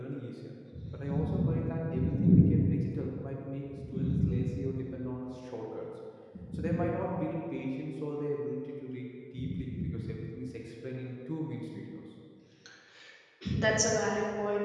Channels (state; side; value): identical; both; correlation 1.00